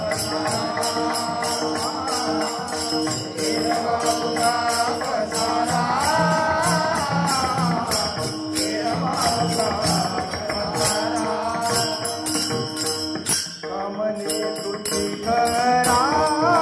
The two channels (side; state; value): both; identical; correlation 1.00